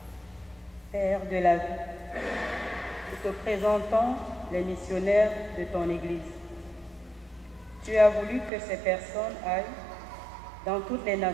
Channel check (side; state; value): left; drops out; at 8.5 s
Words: Père de la vie, nous te présentons les missionnaires de ton Église. Tu as voulu que ces personnes aillent dans toutes les